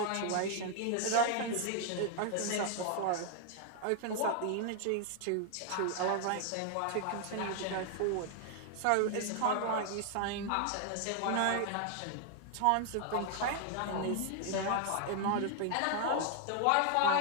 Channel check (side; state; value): both; different; correlation 0.00